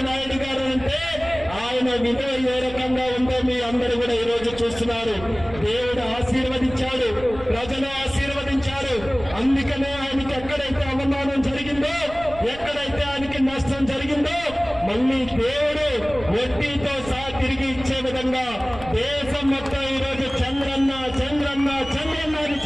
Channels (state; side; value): noise; right; rumble, 15 dB below the sound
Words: నాయుడు గారు అంటే ఆయన విలువ ఏ రకంగా ఉందో మీ అందరూ కూడా ఈ రోజు చూస్తున్నారు. దేవుడు ఆశీర్వదించాడు, ప్రజలు ఆశీర్వదించారు. అందుకనే ఆయనకి ఎక్కడైతే అవమానం జరిగిందో, ఎక్కడైతే ఆయనకి నష్టం జరిగిందో మళ్ళీ దేవుడు వడ్డీతో సహా తిరిగి ఇచ్చే విధంగా దేశం మొత్తం ఈ రోజు చంద్రన్న చంద్రన్న చంద్రన్న అని